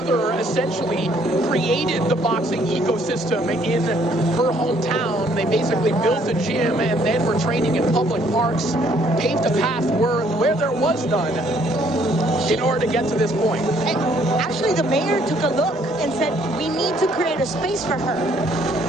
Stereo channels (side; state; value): both; normal; correlation 0.64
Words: essentially created the boxing ecosystem in her hometown. They basically built a gym and then were training in public parks, paved a path where there was none in order to get to this point. And actually, the mayor took a look and said, we need to create a space for her.